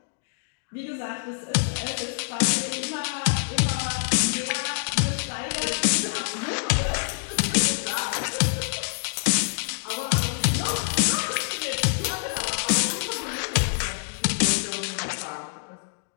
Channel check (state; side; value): silent; right; digital silence